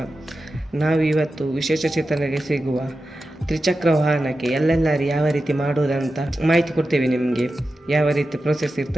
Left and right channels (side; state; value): both; normal; correlation 0.92